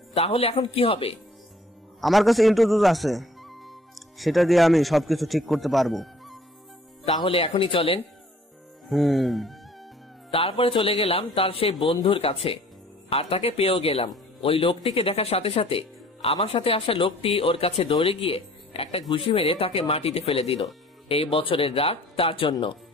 তাহলে এখন কি হবে? আমার কাছে ইন্ট্রোডোজ আছে, সেটা দিয়ে আমি সবকিছু ঠিক করতে পারবো। তাহলে এখনই চলেন। তারপরে চলে গেলাম তার সেই বন্ধুর কাছে, আর তাকে পেয়েও গেলাম। ওই লোকটিকে দেখার সাথে সাথে আমার সাথে আসা লোকটি ওর কাছে দৌড়ে গিয়ে একটা ঘুষি মেরে তাকে মাটিতে ফেলে দিল। এই বছরের রাগ তার জন্য।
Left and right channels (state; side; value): normal; both; correlation 0.54